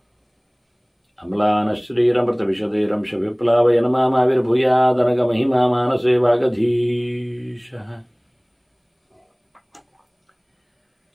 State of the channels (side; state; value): both; identical; correlation 1.00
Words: अम्लानश्रीरमृतविशदैरंशविप्लावयन मामाविर्भूयादनगमहिमा मानसे वागधीशः।